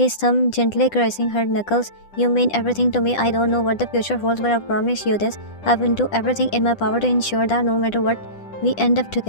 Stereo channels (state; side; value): late; right; 10 ms